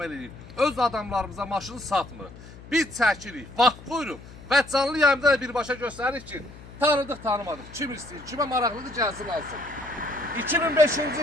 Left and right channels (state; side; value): noise; left; hum, 18 dB below the sound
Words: edirik. Öz adamlarımıza maşını satmır. Biz çəkirik, vaxt qoyuruq və canlı yayımda da birbaşa göstəririk ki, tanıdıq, tanımadıq. Kim istəyir, kimə maraqlıdır gəlsin alsın.